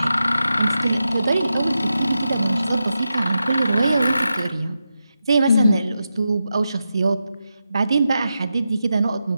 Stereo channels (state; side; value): inverted; both; correlation -0.89